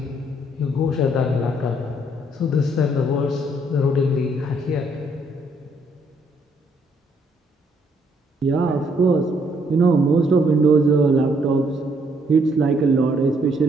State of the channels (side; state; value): both; normal; correlation 0.69